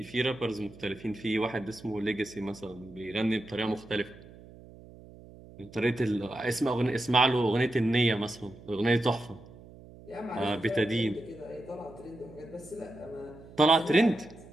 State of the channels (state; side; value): noise; right; hum, 19 dB below the sound